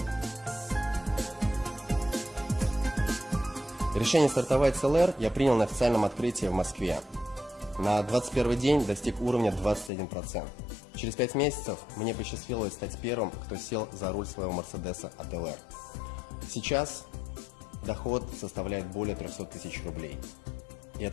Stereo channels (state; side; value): drops out; right; at 9.9 s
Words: Решение стартовать с ЛР я принял на официальном открытии в Москве. На 21 день достиг уровня 21%. Через 5 месяцев мне посчастливилось стать первым, кто сел за руль своего Мерседеса от ЛР. Сейчас доход составляет более 300 тысяч рублей. И